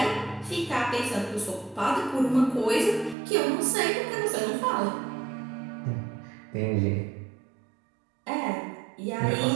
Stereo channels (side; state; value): left; drops out; at 3.2 s